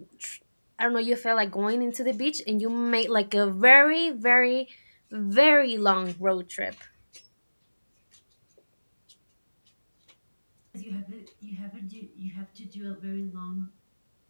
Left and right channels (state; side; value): inverted; both; correlation -1.00